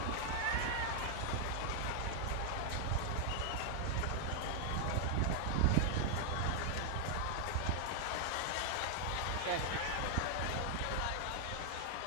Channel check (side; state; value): both; different; correlation 0.00